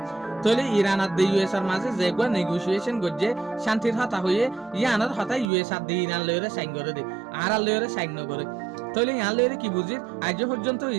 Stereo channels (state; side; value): drops out; left; at 5.5 s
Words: তলে ইরান আর ইউএস এর মাঝে যেগো নেগোসিয়েশন গজ্জে শান্তির হতা হয়ে ইয়ানের হতা ইউএস আর ইরান লয়রে সাইন করে দে আর লয়রে সাইন নগরে তলে ইয়ান লয়রে কি বুঝির আজ পর্যন্ত